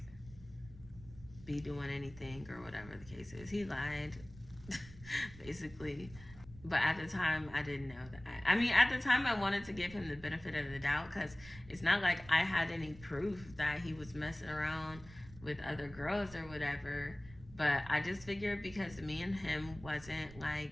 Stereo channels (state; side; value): noise; right; rumble, 18 dB below the sound